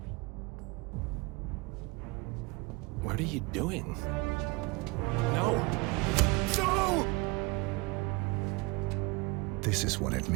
What are you doing? No! No! This is what it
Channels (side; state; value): left; quieter; 26.2 dB